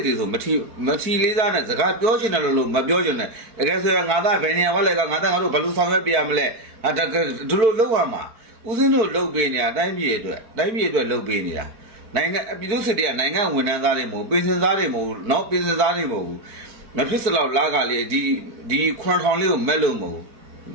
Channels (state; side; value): late; left; 4.5 ms